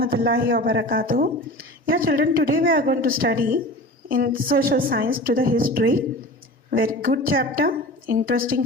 wabarakatuh. Yeah, children, today we are going to study in social science to the history. Very good chapter, interesting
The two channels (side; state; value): both; normal; correlation 0.35